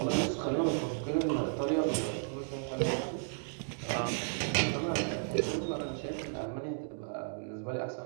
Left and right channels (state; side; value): silent; left; digital silence